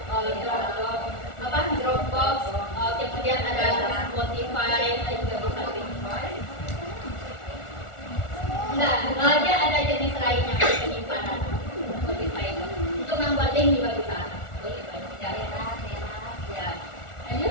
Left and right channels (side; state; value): right; late; 1.4 ms